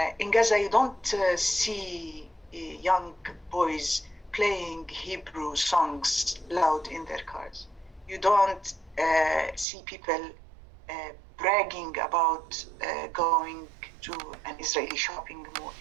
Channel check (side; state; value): left; drops out; at 9.7 s